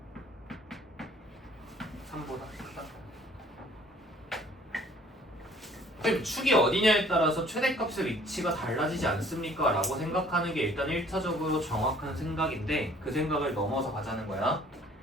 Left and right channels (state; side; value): normal; both; correlation 0.56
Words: 3보다 크다. 그럼 축이 어디냐에 따라서 최대값의 위치가 달라지지 않습니까? 라고 생각하는 게 일단 1차적으로 정확한 생각인데 그 생각을 넘어서 가자는 거야.